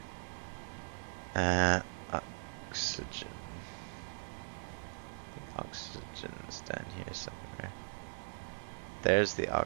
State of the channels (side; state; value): left; silent; digital silence